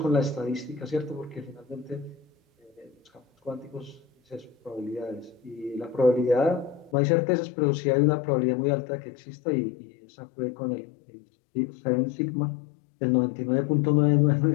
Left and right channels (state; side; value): drops out; right; at 7.0 s